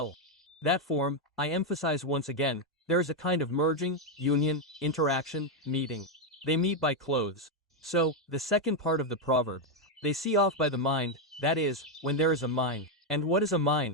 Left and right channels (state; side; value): normal; both; correlation 0.03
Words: That form, I emphasize once again, there is a kind of merging, union, interaction, meeting. They meet by clothes. So, the second part of the proverb. They see off by the mind, that is, when there is a mind. And what is a